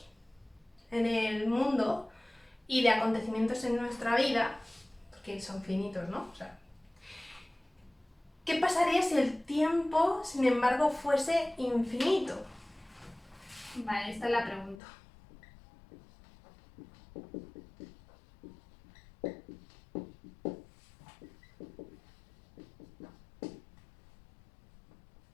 en el mundo y de acontecimientos en nuestra vida, porque son finitos, ¿no? O sea, ¿qué pasaría si el tiempo, sin embargo, fuese infinito? Vale, esta es la pregunta.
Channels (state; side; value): drops out; right; at 14.8 s